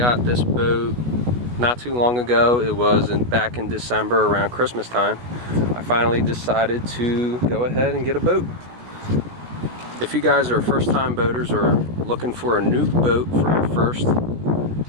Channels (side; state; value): left; late; 16 ms